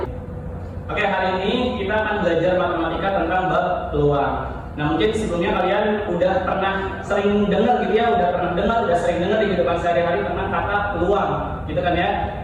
Oke, hari ini kita akan belajar matematika tentang bab peluang. Nah, mungkin sebelumnya kalian udah pernah sering dengar gitu ya, udah sering dengar di kehidupan sehari-hari tentang kata peluang, gitu kan ya.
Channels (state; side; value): identical; both; correlation 1.00